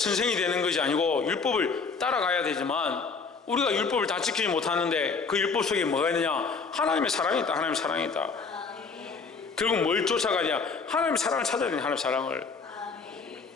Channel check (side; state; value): right; quieter; 4.9 dB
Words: 되는 것이 아니고 율법을 따라가야 되지만 우리가 율법을 다 지키지 못하는데 그 율법 속에 뭐가 있느냐? 하나님의 사랑이 있다. 하나님의 사랑이 있다. 결국 뭘 쫓아가냐? 하나님의 사랑을 찾아야 되냐? 하나님의 사랑을.